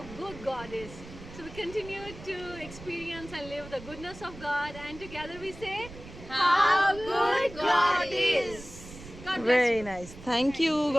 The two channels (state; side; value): noise; right; rumble, 15 dB below the sound